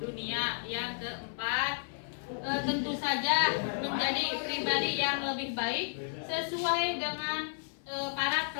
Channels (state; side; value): silent; right; digital silence